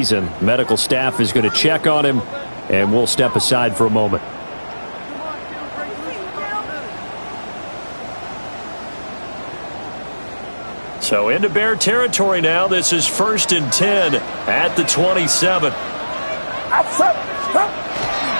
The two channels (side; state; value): both; inverted; correlation -1.00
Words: Medical staff is going to check on him, and we'll step aside for a moment. So into Bear territory now. This is 1st and 10 at the 27.